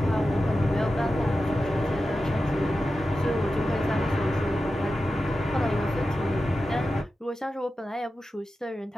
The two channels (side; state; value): both; normal; correlation 0.92